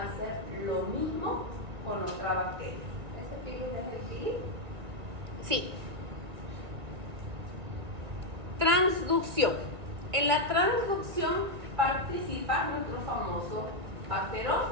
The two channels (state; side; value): late; left; 2.0 ms